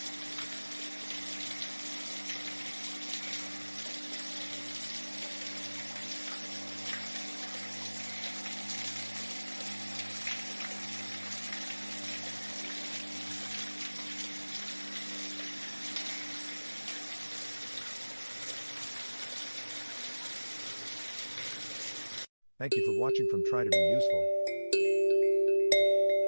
Thank you for watching from Try to Be Useful.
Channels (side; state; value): both; inverted; correlation -1.00